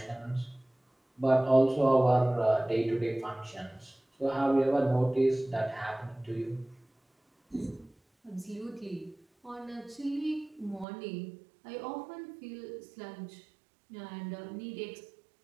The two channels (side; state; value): left; drops out; at 10.9 s